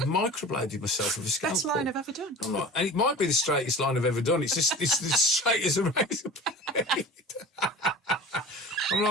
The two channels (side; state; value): both; normal; correlation 0.38